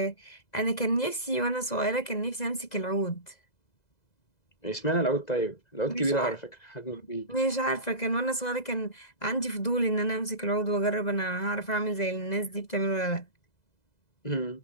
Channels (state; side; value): late; right; 2.0 ms